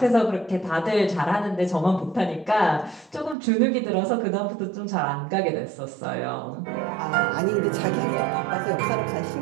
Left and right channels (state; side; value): drops out; left; at 3.4 s